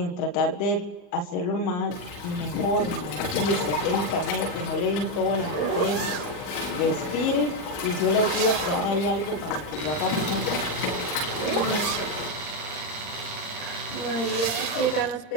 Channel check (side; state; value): right; late; 39 ms